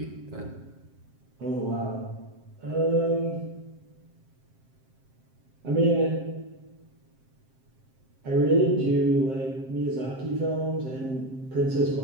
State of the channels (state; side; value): late; left; 7.6 ms